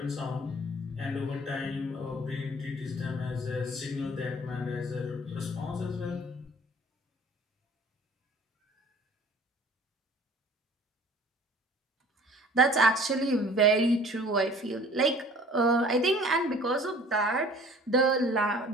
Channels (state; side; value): normal; both; correlation 0.50